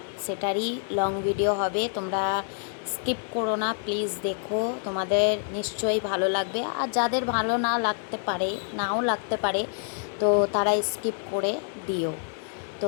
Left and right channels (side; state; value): right; silent; 56 dB below the other